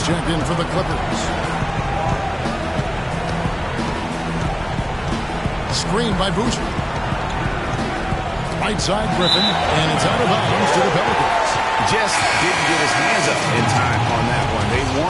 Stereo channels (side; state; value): both; identical; correlation 1.00